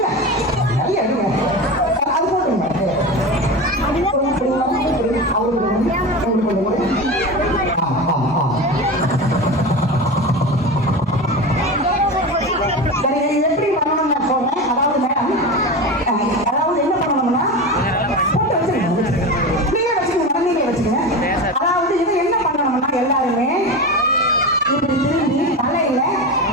நிறைய எடுங்க. அது போட்டுருங்க. சரி எப்படி பண்ணணும் நான் சொல்றேன். அதாவது மேடம் அதாவது என்ன பண்ணணும்னா போட்டு வச்சுக்கணும். நீங்களே வச்சுக்கோங்க. அதாவது இது என்ன பண்ணணும்னா எல்லாருமே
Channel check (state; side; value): normal; both; correlation 0.25